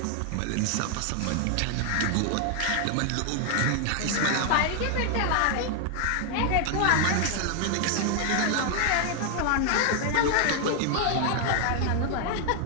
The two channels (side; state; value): both; different; correlation 0.00